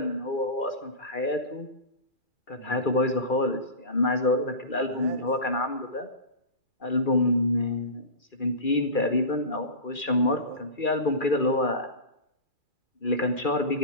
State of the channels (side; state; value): right; late; 2.4 ms